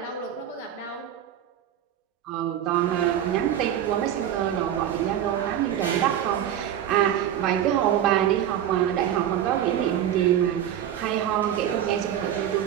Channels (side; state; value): left; quieter; 10.5 dB